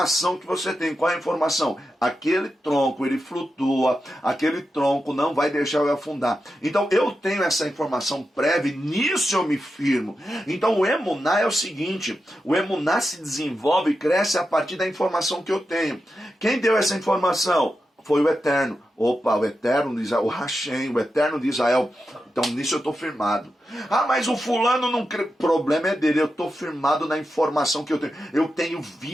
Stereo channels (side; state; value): both; normal; correlation 0.89